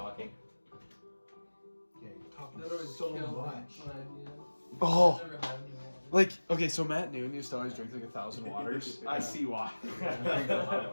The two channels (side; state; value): both; inverted; correlation -1.00